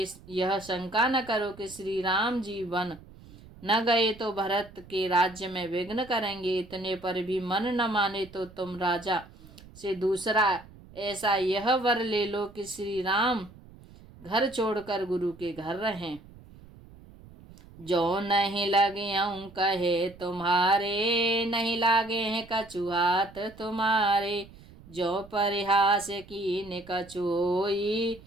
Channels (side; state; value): right; noise; rumble, 21 dB below the sound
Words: यह शंका न करो कि श्री राम जी वन न गए तो भरत के राज्य में विघ्न करेंगे। इतने पर भी मन न माने तो तुम राजा से दूसरा ऐसा यह वर ले लो कि श्री राम घर छोड़कर गुरु के घर रहें। जो नहीं लगे कहे तुम्हारे, नहीं लागे हैं कछु हाथ तुम्हारे। जो परिहास कीन कछु होई,